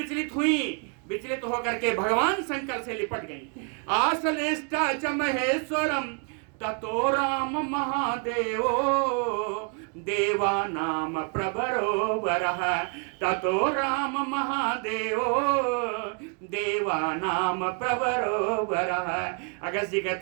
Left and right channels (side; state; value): left; quieter; 38.1 dB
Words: हुई, विचलित होकर के भगवान शंकर से लिपट गई। आसलिष्टा च महेश्वरम ततो राम महादेवो देवानाम प्रभरो वरः, ततो राम महादेवो देवानाम प्रभरो वरः। अगस्त जी